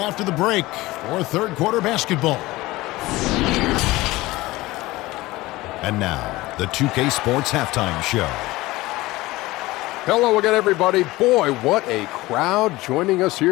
the break for third quarter basketball. And now, the 2K Sports Halftime Show. Hello again, everybody. Boy, what a crowd joining us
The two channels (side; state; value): right; quieter; 19.3 dB